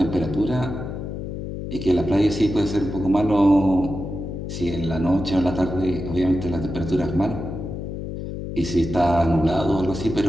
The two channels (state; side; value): noise; left; hum, 6 dB below the sound